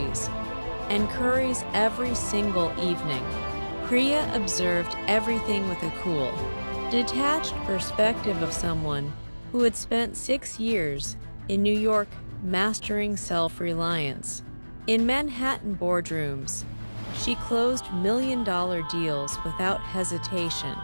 and curries every single evening. Priya observed everything with a cool, detached perspective of someone who had spent 6 years in New York mastering self-reliance. In Manhattan boardrooms, she closed million-dollar deals without hesitation.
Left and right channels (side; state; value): both; inverted; correlation -1.00